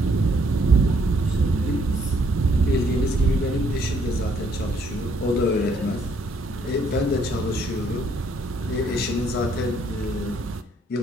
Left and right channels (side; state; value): both; normal; correlation 0.67